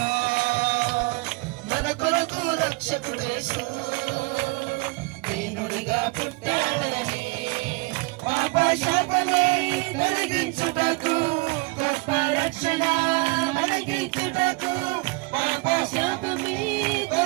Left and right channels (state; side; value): quieter; left; 26.2 dB